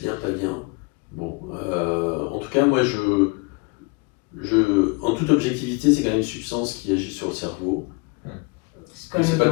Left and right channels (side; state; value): right; quieter; 29.2 dB